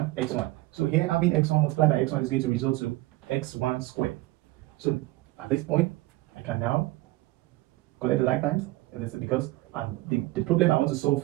x1. So here having x1 multiplied by x1 is going to result to x1 squared. So at this point, I can now collect the like times, because the problem I want to solve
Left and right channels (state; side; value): quieter; left; 19.7 dB